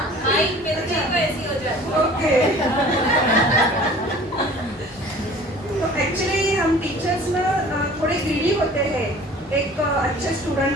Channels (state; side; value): normal; both; correlation 0.46